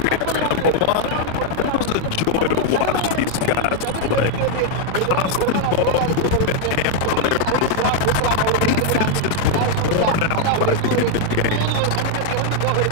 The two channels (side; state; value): both; different; correlation 0.00